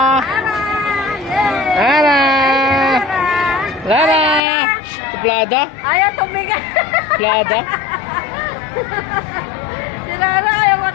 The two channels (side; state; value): right; drops out; at 4.4 s